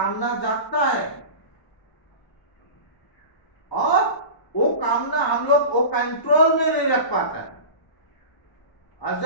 जागता है, और वो कामना हम लोग वो कंट्रोल में नहीं रख पाता है। और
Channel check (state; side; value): late; right; 1.0 ms